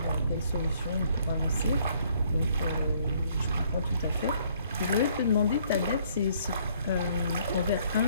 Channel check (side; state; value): both; inverted; correlation -0.64